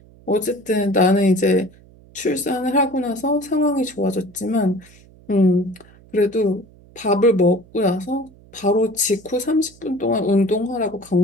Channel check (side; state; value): right; noise; hum, 25 dB below the sound